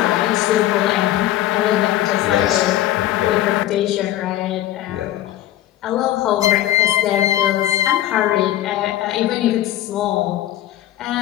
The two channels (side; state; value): right; quieter; 13.6 dB